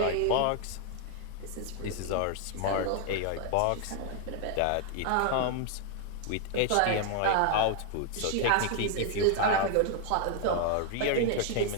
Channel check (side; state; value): both; different; correlation 0.00